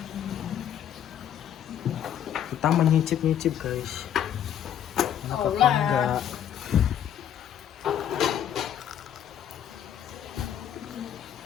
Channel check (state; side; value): quieter; right; 9.8 dB